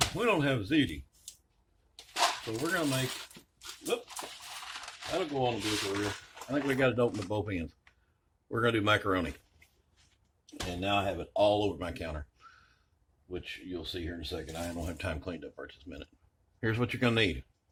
we don't have ziti. So we're going to make, whoop, that'll go on the blooper reel. I think we got it open at both ends. We're going to do macaroni. And now I have it all over my counter, which you'll see here in a second. I don't have time cleaned up right this minute. Here's what you're going to need.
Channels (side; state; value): both; identical; correlation 1.00